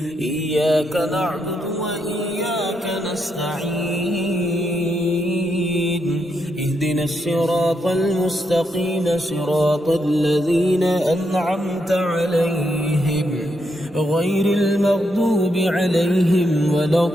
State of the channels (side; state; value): both; normal; correlation 0.80